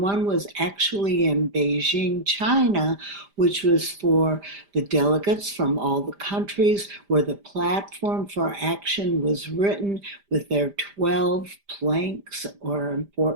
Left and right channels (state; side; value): late; left; 5.0 ms